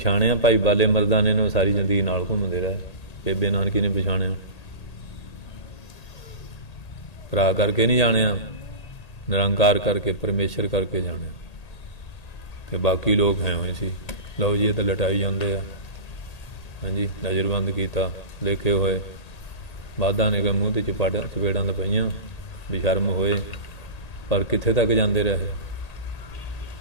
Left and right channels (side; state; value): right; late; 1.8 ms